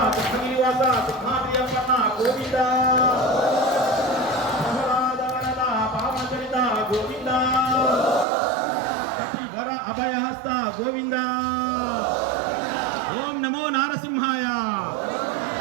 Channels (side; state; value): left; drops out; at 8.2 s